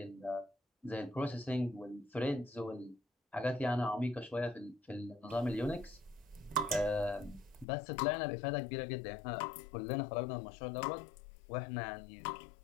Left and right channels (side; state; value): right; drops out; at 7.7 s